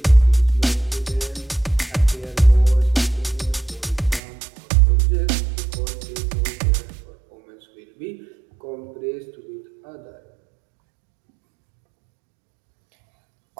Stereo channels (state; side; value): drops out; left; at 4.2 s